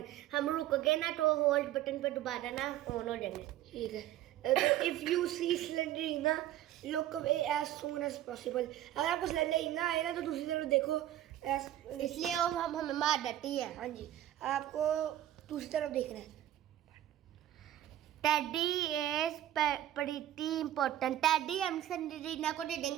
हम रुक गए ना तो hold button पे दोबारा ना ऑन हो जाएंगे। ठीक है। तो if you see Slenderina look away as soon as possible. अगर आपको स्लेंडरीना आए ना तो दूसरी तरफ देखो। इसलिए वो हम हमें मार देती है। हाँ जी, आपको दूसरी तरफ देखना है। Teddy is pretty important. Teddy हम स्लेंडरीना को दे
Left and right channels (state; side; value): quieter; left; 12.8 dB